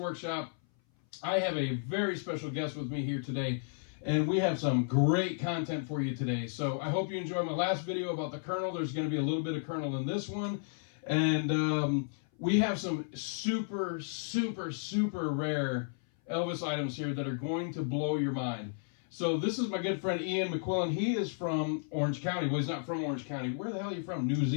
I have a very special guest with me here today, and we have some great content for you today. So, I hope you enjoyed my last video about the Colonel. There's going to be a little bit of Colonel in this one. And we have some super, super, super rare Elvis items here that are going to blow your mind. So this is my good friend Ian McQuillan. He is from Orange County. Well, he's not from Orange County. Where the hell are you from? New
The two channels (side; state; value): right; silent; 56 dB below the other